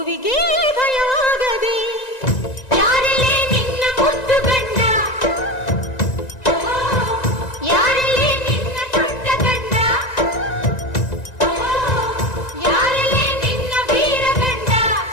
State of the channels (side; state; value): right; late; 1.9 ms